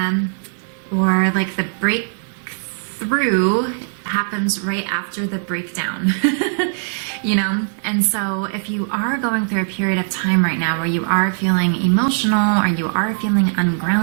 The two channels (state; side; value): silent; left; digital silence